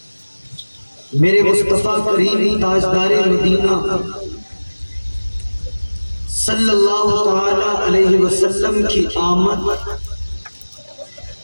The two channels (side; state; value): both; inverted; correlation -1.00